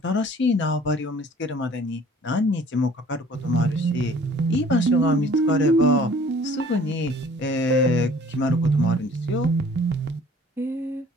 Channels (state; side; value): normal; both; correlation 0.52